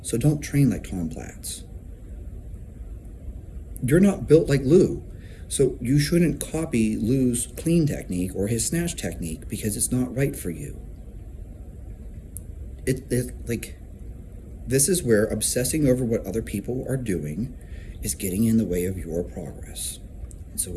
so don't train like Tom Platz. You're not built like Lou, so you shouldn't copy Lou's clean technique or his snatch technique because it's not right for you. This is where obsessing over what other people are doing is getting in the way of your progress. And so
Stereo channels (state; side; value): identical; both; correlation 1.00